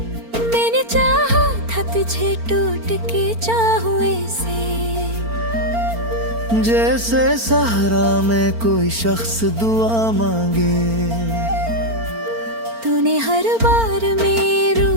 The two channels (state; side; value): late; left; 4.4 ms